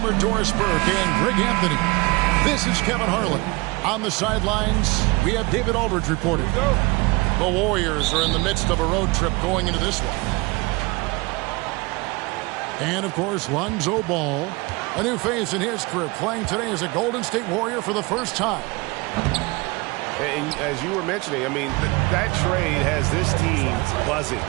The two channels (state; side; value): quieter; left; 25.0 dB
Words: Doris Burke and Greg Anthony. This is Kevin Harlan. On the sidelines, we have David Aldridge reporting. The Warriors are in the midst of a road trip going into this one. And, of course, Lonzo Ball, a new face in his career, playing today as a Golden State Warrior for the first time. And as you were mentioning, I mean, that trade has this team buzzing.